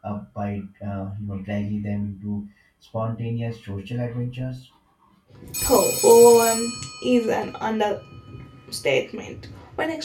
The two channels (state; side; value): identical; both; correlation 1.00